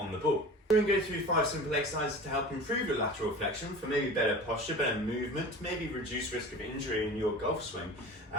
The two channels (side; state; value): both; normal; correlation 0.37